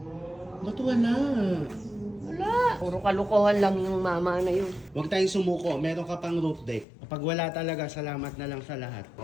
Ba't wala? Wala. Puro kalokohan lang yung mama na yun. Huwag tayong sumuko, meron ka pang roof deck. Kapag wala talaga, salamat na lang sa lahat.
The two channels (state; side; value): drops out; right; at 6.9 s